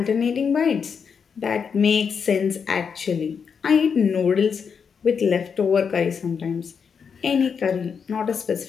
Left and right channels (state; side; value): quieter; right; 6.4 dB